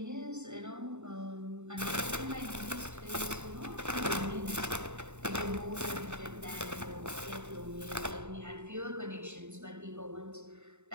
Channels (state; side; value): late; left; 0.83 ms